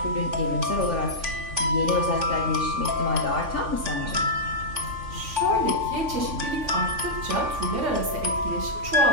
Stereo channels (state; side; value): late; left; 3.5 ms